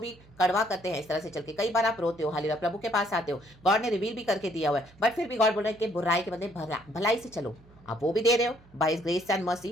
कड़वा करते हैं। इस तरह से चल के कई बार आप रोते हो, हालेलुया, प्रभु के पास आते हो, गॉड ने रिवील भी करके दिया हुआ है, बट फिर भी गॉड बोल रहे हैं कि बुराई के बदले भलाई से चलो। आप वो भी दे रहे हो by grace and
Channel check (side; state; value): right; noise; hum, 25 dB below the sound